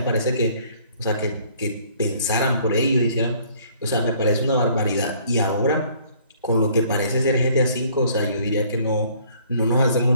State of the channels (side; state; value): both; inverted; correlation -0.59